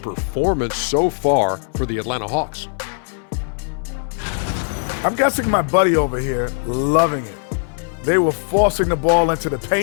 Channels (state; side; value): silent; right; 66 dB below the other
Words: so far for the Atlanta Hawks. I'm guessing my buddy over here loving it. They were forcing the ball into the